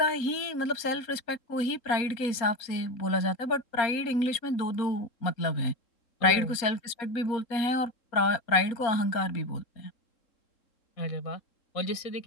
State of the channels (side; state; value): right; late; 3.7 ms